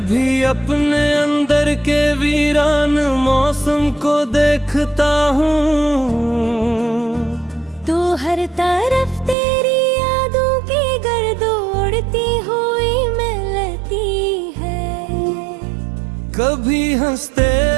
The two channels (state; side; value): drops out; left; at 9.3 s